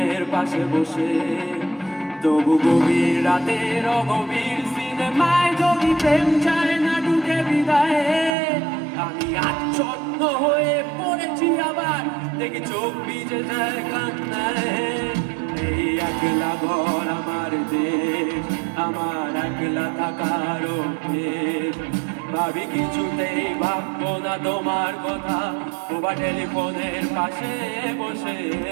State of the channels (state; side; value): drops out; left; at 8.3 s